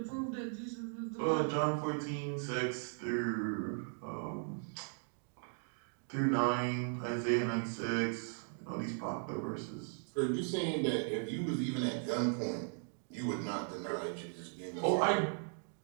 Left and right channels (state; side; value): silent; left; 53 dB below the other